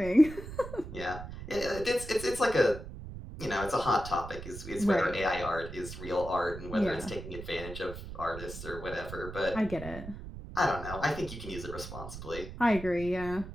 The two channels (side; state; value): right; noise; rumble, 11 dB below the sound